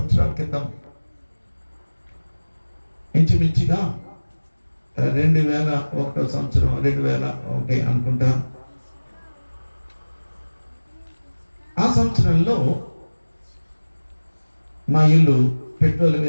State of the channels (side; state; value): both; inverted; correlation -1.00